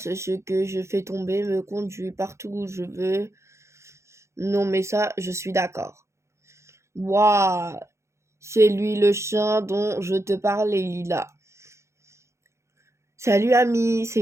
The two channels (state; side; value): late; left; 0.14 ms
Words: ce que je fais tomber, me conduit partout où je veux. Non mais ça, je suis d'accord. Waouh, C'est lui le chien dont je te parlais, Lila. Salut ami, c'est